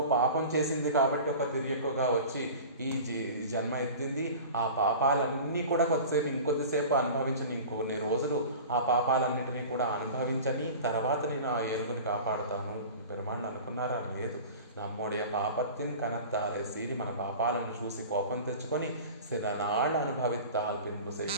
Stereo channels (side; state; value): both; inverted; correlation -0.37